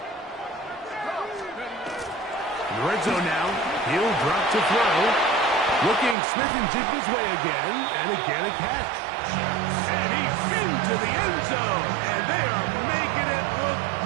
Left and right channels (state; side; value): drops out; left; at 6.2 s